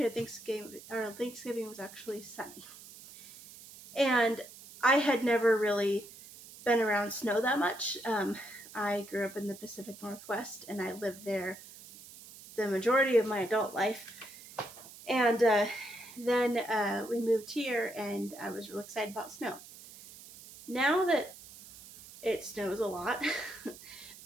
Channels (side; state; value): right; noise; hiss, 18 dB below the sound